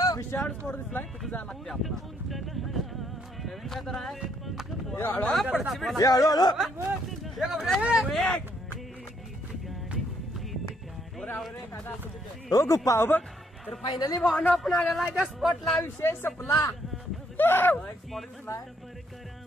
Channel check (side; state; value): both; normal; correlation 0.70